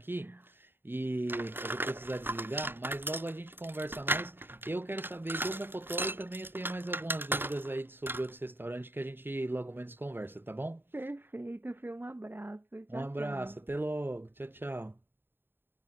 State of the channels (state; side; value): late; left; 0.10 ms